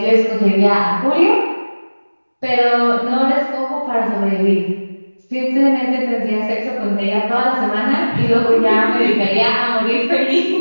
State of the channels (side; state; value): both; inverted; correlation -1.00